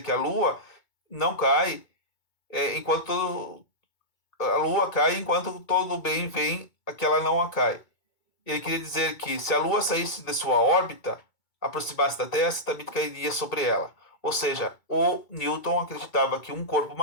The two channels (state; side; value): late; right; 2.3 ms